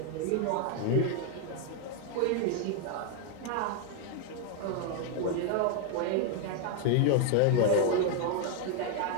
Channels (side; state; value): both; different; correlation 0.00